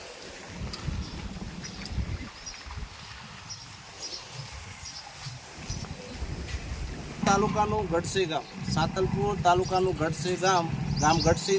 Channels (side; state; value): both; identical; correlation 1.00